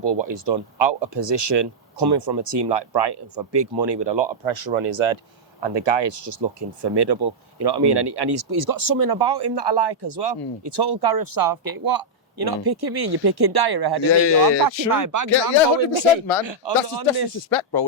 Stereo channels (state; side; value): normal; both; correlation -0.06